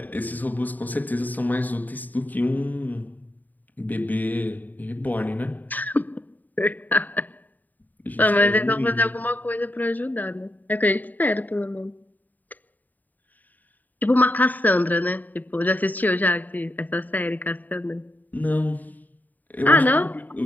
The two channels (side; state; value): right; late; 0.083 ms